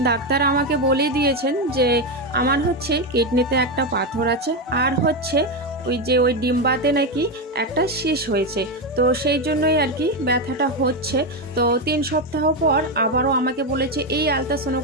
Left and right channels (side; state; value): both; normal; correlation 0.09